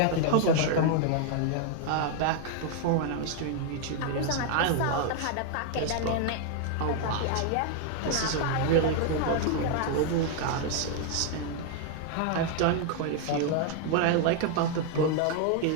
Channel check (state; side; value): different; both; correlation 0.00